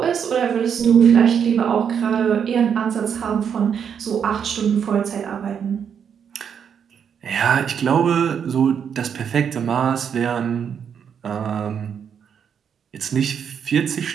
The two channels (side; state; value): left; quieter; 7.6 dB